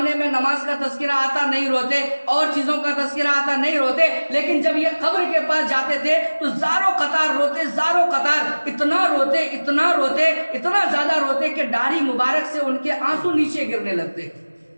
میں نماز کا تذکرہ آتا نہیں روتے، اور چیزوں کا تذکرہ آتا نہیں روتے، لیکن جب یہ قبر کے پاس جاتے تھے تو زاروں قطار روتے، اتنا زیادہ روتے کہ داڑھی مبارک سے ان کے آنسو نیچے گرنے لگتے۔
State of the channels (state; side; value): inverted; both; correlation -1.00